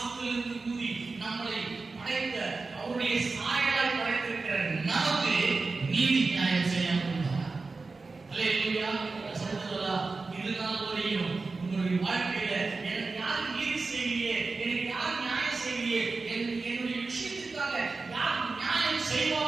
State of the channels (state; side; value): quieter; left; 3.9 dB